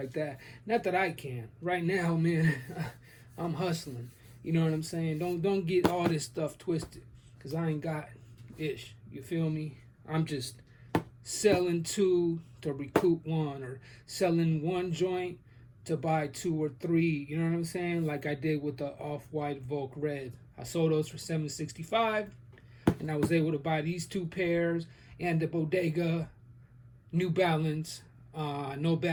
that. Not that I can. Right now, man, I'm hustling. You know what I'm saying? Don't get all this stuff twisted, because I ain't got ish. You feel me? I'm just selling 2 to recoup 1, or selling 1 joint to buy 2 or 3, you know what I'm saying? Like I did with the off-white Volk Red. I sold those for $765, and I was able to buy these 2 pairs and the Bodega New Balance No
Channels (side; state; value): both; identical; correlation 1.00